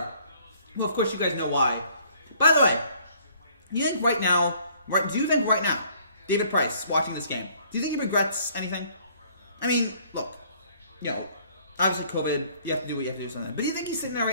Well, of course you guys know why. By the way, do you think right now, David Price watching this game, do you think he regrets anything? I mean, look, obviously COVID, you have to do what you have to do something. But do you think he's sitting there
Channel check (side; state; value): both; inverted; correlation -0.60